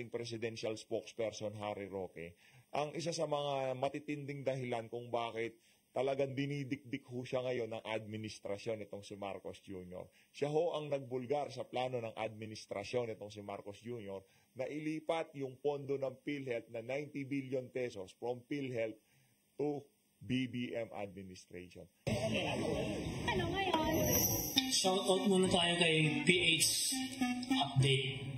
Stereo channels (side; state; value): both; identical; correlation 1.00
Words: presidential spokesperson Harry Roque, ang isa sa mga matitinding dahilan kung bakit talagang dinidikdik ho siya ngayon ng administrasyon itong si Marcos Jr. Siya ho ang nagbulgar sa plano ng administrasyon itong si Marcos Jr. na ilipat yung pondo ng PhilHealth na 90 billion pesos from PhilHealth to BBM administration. Ano ngayon? Shoutout muna tayo kay PH Update.